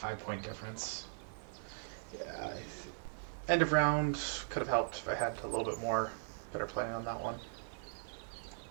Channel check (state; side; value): silent; left; digital silence